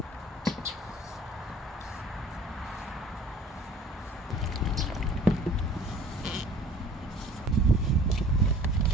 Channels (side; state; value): both; normal; correlation 0.50